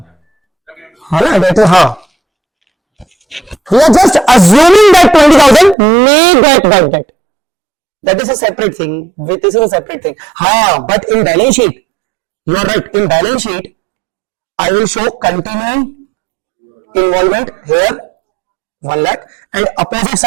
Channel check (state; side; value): drops out; left; at 5.8 s